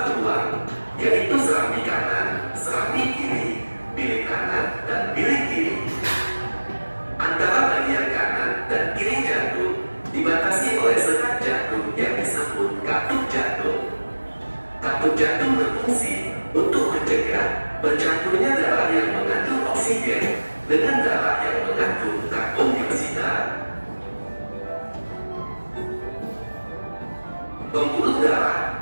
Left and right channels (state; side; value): inverted; both; correlation -1.00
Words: ruang, yaitu serambi kanan, serambi kiri, bilik kanan, dan bilik kiri. Antara bagian kanan dan kiri jantung dibatasi oleh sekat jantung yang disebut katup jantung. Katup jantung berfungsi untuk mencegah bercampurnya darah yang mengandung oksigen dengan darah yang mengandung karbon dioksida. Pembuluh darah